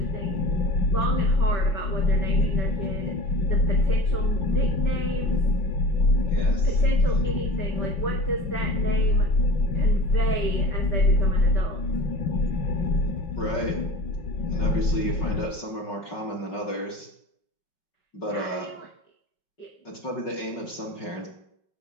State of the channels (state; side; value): late; right; 5.4 ms